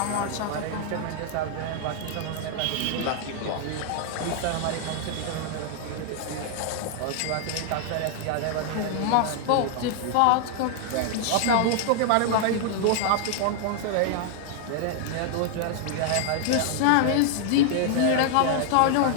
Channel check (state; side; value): different; both; correlation 0.00